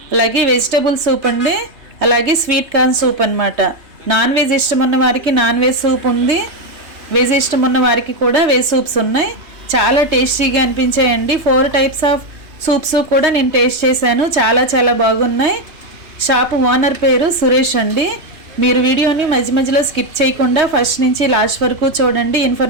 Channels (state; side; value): late; left; 3.2 ms